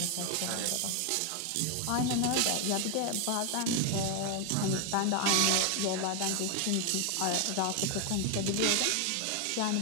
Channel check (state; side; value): different; both; correlation 0.01